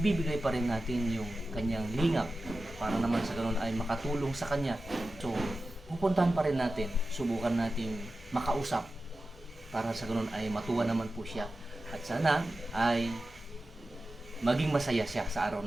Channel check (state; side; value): normal; both; correlation 0.94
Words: pa rin natin yung kanyang lingap para naman sa ganun ay makatulong sa kanya. So, pupuntahan pa rin natin, subukan natin makausap para sa ganun ay matuwa naman po siya. At sana ay maging masaya siya sa araw